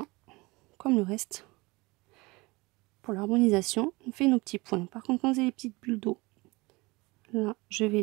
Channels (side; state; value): left; quieter; 23.7 dB